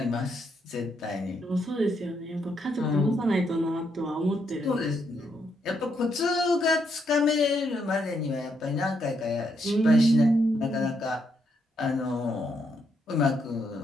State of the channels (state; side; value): normal; both; correlation 0.77